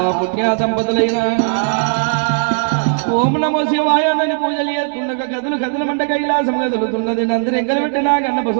పుణ్య దంపతులైన ఓం నమో శివాయ అని పూజలు చేస్తుండగా గదులు గదులు మంట కైలాసం కదులుతున్నది నందిని ఎంకలు పెట్టినా గన్న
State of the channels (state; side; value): silent; left; digital silence